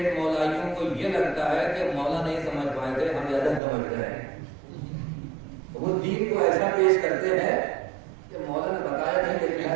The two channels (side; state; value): left; drops out; at 3.6 s